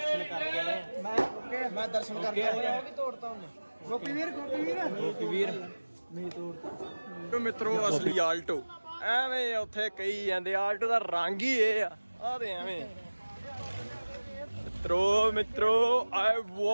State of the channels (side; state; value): both; inverted; correlation -1.00